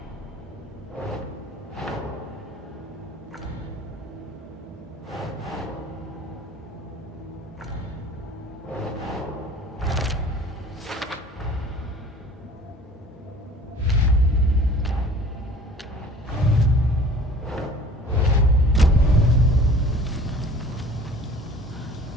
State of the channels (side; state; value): both; normal; correlation 0.48